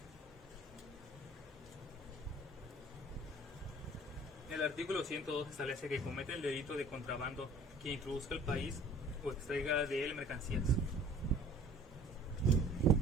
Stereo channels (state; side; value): normal; both; correlation 0.49